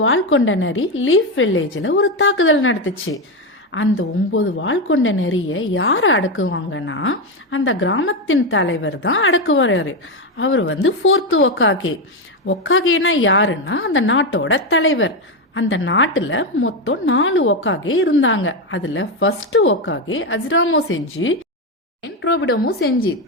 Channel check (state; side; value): normal; both; correlation 0.10